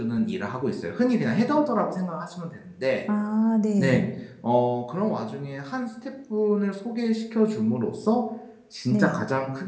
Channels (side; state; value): both; identical; correlation 1.00